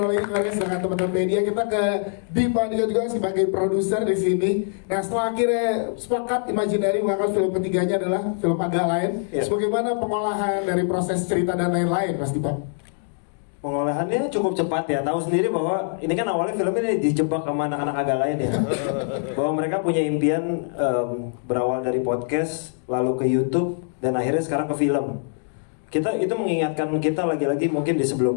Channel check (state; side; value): silent; right; digital silence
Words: lagi Kores dengan teman-teman media. Kita ke Dipa juga sebagai produser di sini. Nah setelah akhirnya sepakat Imaginary mengangkat film ketiganya adalah film agak lain. Bagaimana pengolahan dari proses cerita dan lain-lain, Mas Dipa? Pengolahannya cukup cepat ya. Tahu sendiri bahwa ini kan awalnya film ini dijebak sama anak-anak agak lain ya. Bahwa mereka punya impian berawal dari podcast, lalu ke YouTube, dan akhirnya sekarang ke film. Kita itu mengingatkan kita lagi-lagi, mungkin di